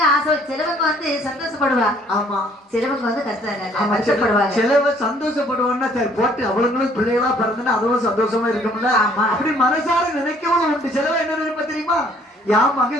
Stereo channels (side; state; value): both; normal; correlation 0.60